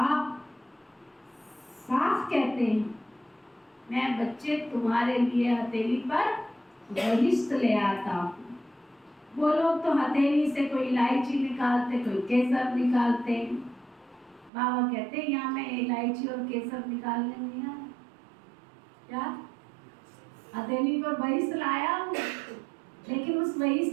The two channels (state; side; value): drops out; left; at 14.5 s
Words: साफ कहते हैं मैं बच्चे तुम्हारे लिए हथेली पर बहिष्ठ ले आता हूँ। वो लोग तो हथेली से कोई इलायची निकालते, कोई केसर निकालते। बाबा कहते हैं यहाँ मैं इलायची और केसर निकालने नहीं आया। क्या हथेली पर बहिष्ठ लाया हूँ, लेकिन उस